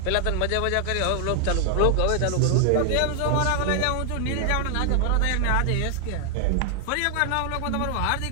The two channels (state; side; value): different; both; correlation 0.00